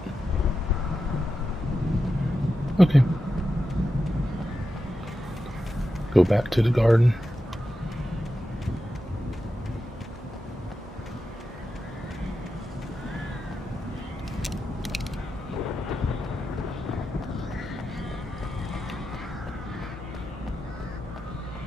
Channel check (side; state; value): both; normal; correlation 0.89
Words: Okay. Go back to the garden.